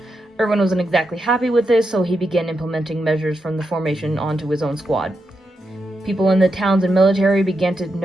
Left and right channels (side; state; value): both; normal; correlation 0.85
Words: Erwin wasn't exactly happy with this, so he began implementing measures from the formation onto his own squad. People in the towns and military began to